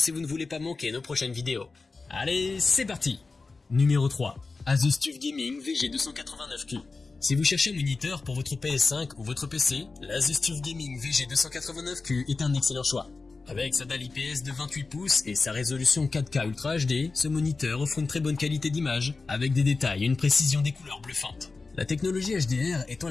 vous ne voulez pas manquer nos prochaines vidéos. Allez, c'est parti! Numéro 3. Asus TUF Gaming VG289Q. Si vous cherchez un moniteur pour votre PS5 ou votre PC, l'Asus TUF Gaming VG289Q est un excellent choix. Avec sa dalle IPS de 28 pouces et sa résolution 4K Ultra HD, ce moniteur offre une très bonne qualité d'image, avec des détails et une précision des couleurs bluffantes. La technologie HDR étend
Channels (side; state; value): right; quieter; 4.0 dB